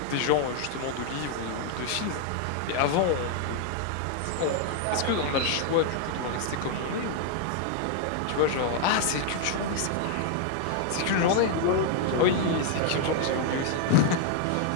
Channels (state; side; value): different; both; correlation 0.00